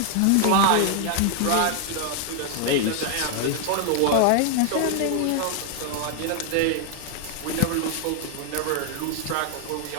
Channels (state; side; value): different; both; correlation 0.00